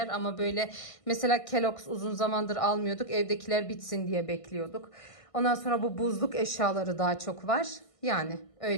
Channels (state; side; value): late; right; 1.6 ms